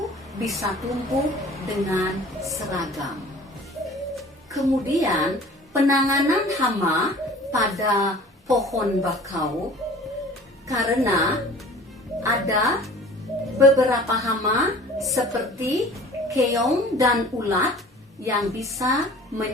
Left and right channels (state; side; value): normal; both; correlation 0.46